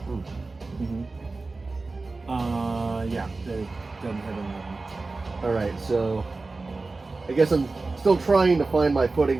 Ooh. Yeah, they doesn't have an 11. Alright, so I guess I'm still trying to find my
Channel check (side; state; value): left; quieter; 3.6 dB